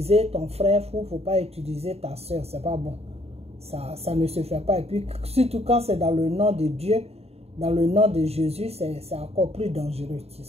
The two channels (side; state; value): left; late; 0.30 ms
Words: ton frère fou, faut pas utiliser ta soeur. C'est pas bon. Ça ne se fait pas. Et puis surtout quand c'est dans le nom de Dieu, dans le nom de Jésus, c'est encore plus dangereux.